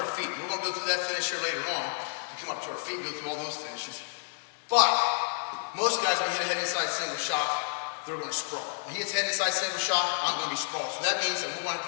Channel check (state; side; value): silent; right; digital silence